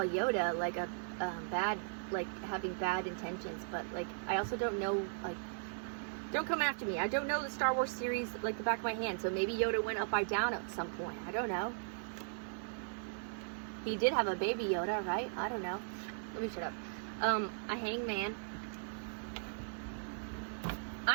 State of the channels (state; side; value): silent; left; digital silence